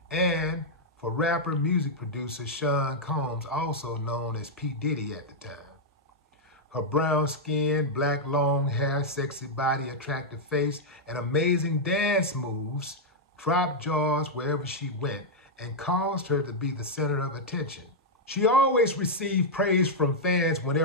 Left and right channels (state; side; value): normal; both; correlation -0.04